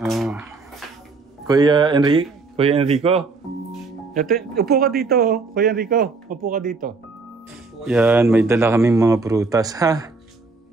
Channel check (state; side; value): quieter; left; 4.0 dB